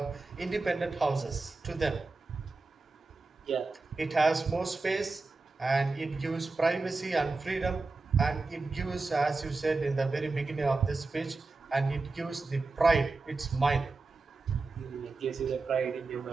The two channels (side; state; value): left; quieter; 3.7 dB